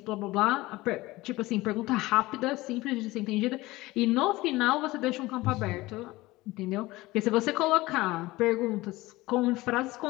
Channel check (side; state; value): right; quieter; 19.6 dB